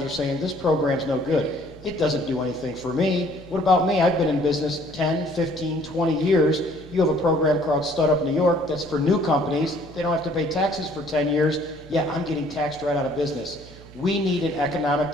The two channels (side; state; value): right; noise; hum, 19 dB below the sound